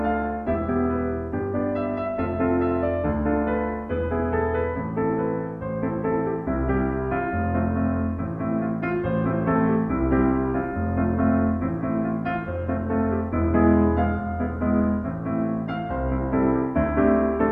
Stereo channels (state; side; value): identical; both; correlation 1.00